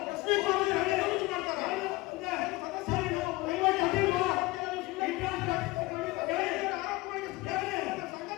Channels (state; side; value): quieter; right; 21.0 dB